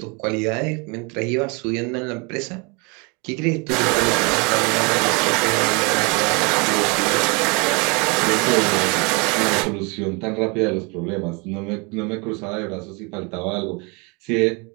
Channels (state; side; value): quieter; left; 30.0 dB